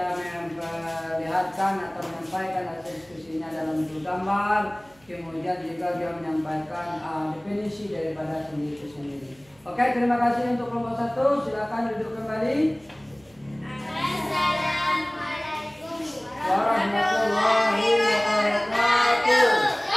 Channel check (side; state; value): right; noise; hum, 30 dB below the sound